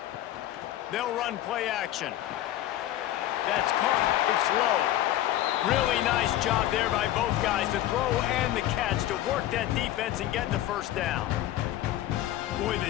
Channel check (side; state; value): right; quieter; 13.5 dB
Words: They'll run play action. That's caught. It's low. Really nice job there by both guys to throw and the catch to work that defense and get the 1st down. Boy,